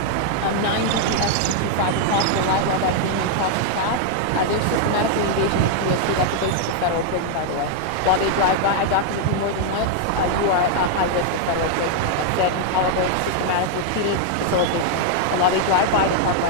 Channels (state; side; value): different; both; correlation 0.00